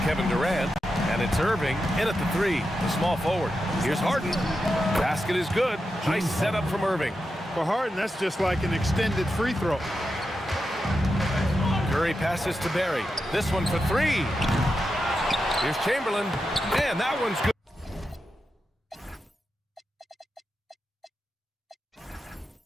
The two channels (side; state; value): both; normal; correlation 0.89